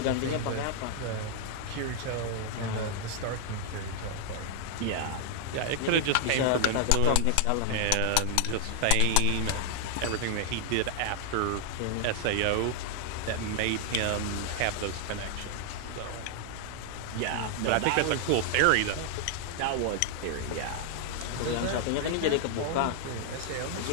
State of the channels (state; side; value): different; both; correlation 0.00